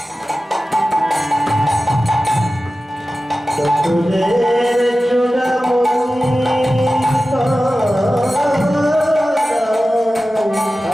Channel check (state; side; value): normal; both; correlation 0.95